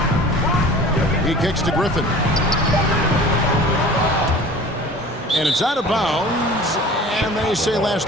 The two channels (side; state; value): both; normal; correlation 0.42